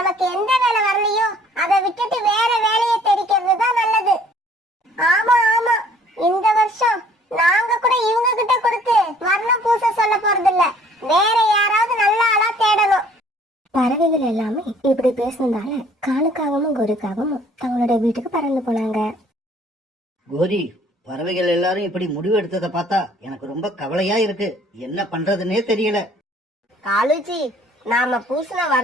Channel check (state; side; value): normal; both; correlation 0.57